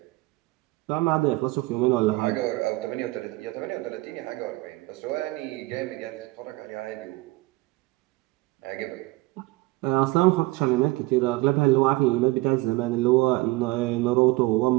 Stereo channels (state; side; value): quieter; left; 21.2 dB